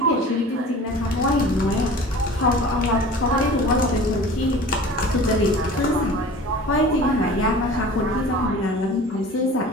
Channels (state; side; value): normal; both; correlation 0.41